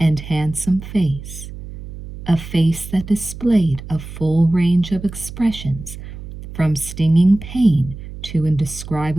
handsome face. A face that displayed a full range of expressions, from stinging pain to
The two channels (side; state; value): right; noise; hum, 12 dB below the sound